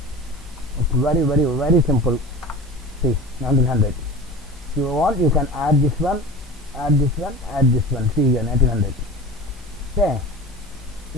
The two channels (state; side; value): normal; both; correlation 0.34